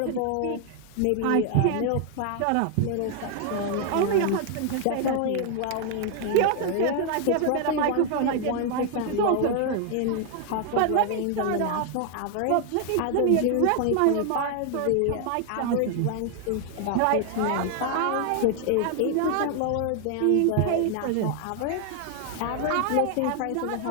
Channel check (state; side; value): different; both; correlation 0.00